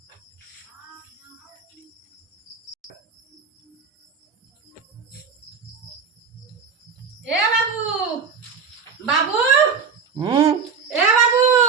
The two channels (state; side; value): quieter; left; 6.0 dB